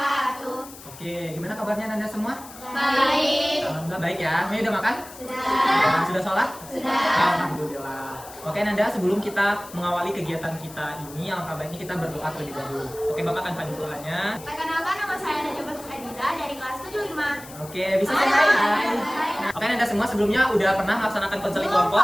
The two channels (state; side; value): noise; left; hiss, 17 dB below the sound